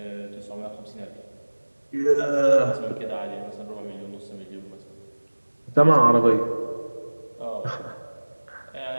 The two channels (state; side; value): inverted; both; correlation -1.00